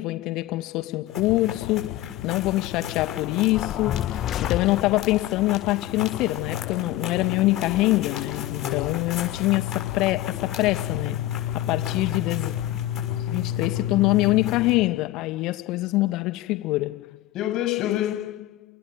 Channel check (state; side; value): quieter; right; 15.5 dB